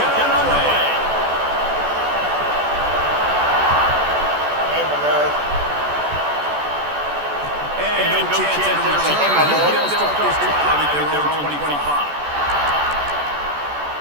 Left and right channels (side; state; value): left; late; 14 ms